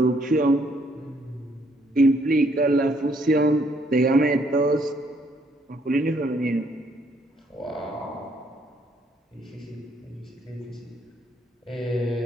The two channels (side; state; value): both; normal; correlation 0.68